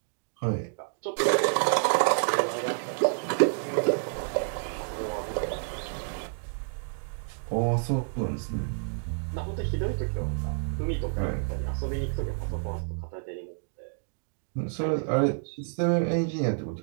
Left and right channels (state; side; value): silent; left; digital silence